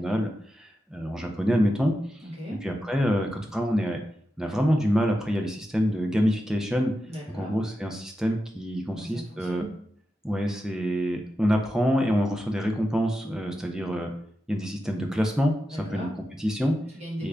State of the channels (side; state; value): both; normal; correlation 0.90